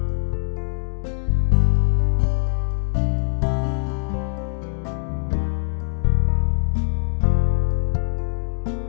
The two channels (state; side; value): silent; right; digital silence